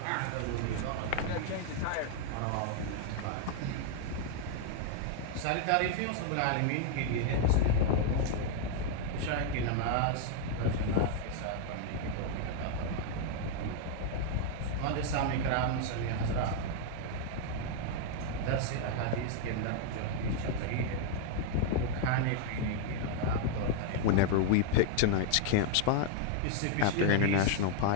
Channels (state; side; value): different; both; correlation 0.00